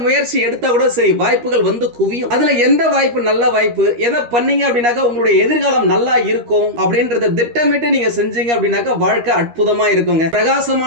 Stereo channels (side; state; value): left; late; 13 ms